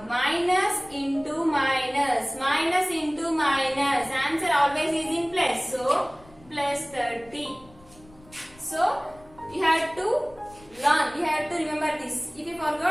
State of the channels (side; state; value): left; noise; rumble, 25 dB below the sound